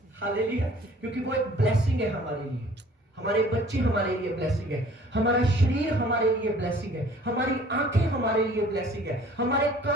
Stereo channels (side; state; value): both; normal; correlation 0.52